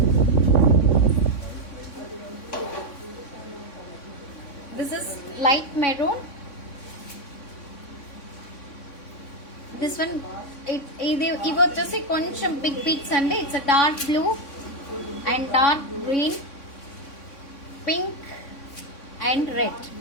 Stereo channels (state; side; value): late; right; 3.6 ms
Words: This is light maroon. This one ఇవి వచ్చేసి కొంచెం big pics అండి. It's a dark blue and dark green, pink and red.